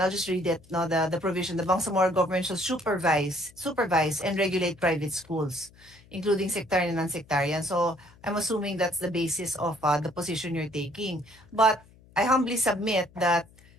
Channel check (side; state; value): left; noise; hum, 26 dB below the sound